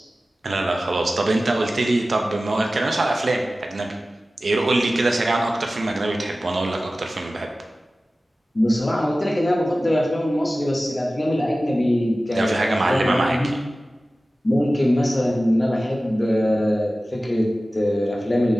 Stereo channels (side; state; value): both; normal; correlation 0.96